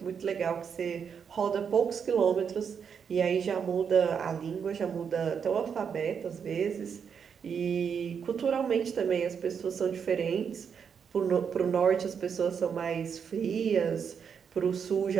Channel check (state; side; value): quieter; left; 6.9 dB